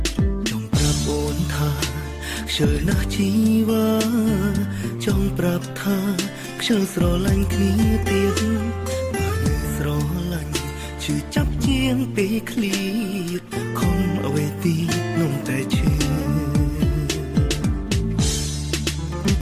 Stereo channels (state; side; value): identical; both; correlation 1.00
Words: ចង់ប្រាប់អូនថាខ្ជិលណាស់ជីវ៉ាចង់ប្រាប់ថាខ្ជិលស្រឡាញ់គ្នាទៀតស្រឡាញ់ឈឺចាប់ជាងពេលឃ្លៀតខំអ្វីទីនំតែឈឺ